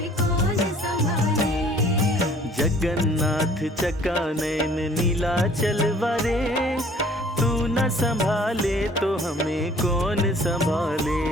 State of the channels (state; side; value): normal; both; correlation 0.54